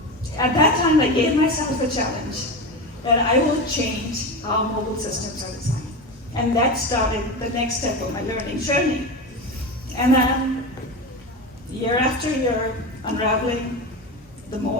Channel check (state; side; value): normal; both; correlation 0.22